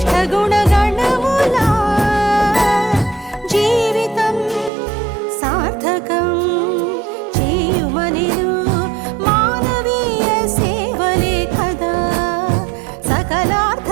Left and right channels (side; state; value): left; drops out; at 4.7 s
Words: గుణగణముల జీవితం సార్థకం చేయుమనెను మానవీయ సేవలే కదా సకలార్థ